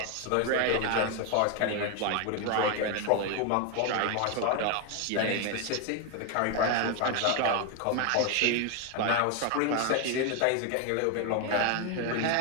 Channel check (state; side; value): different; both; correlation 0.01